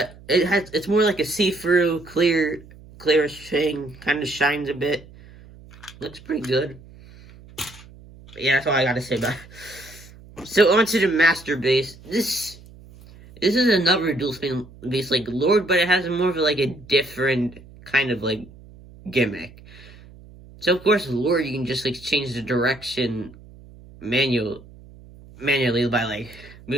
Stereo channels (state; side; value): noise; right; hum, 21 dB below the sound